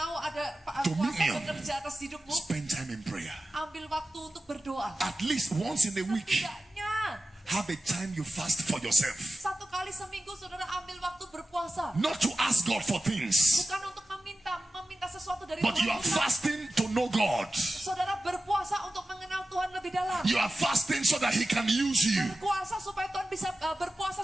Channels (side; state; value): both; normal; correlation 0.94